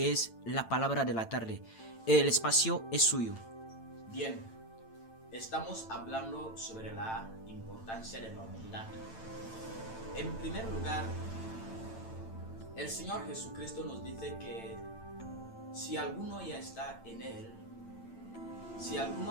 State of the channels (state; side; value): late; right; 8.9 ms